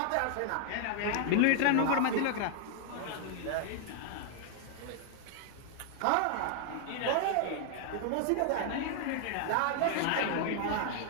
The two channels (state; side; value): different; both; correlation 0.00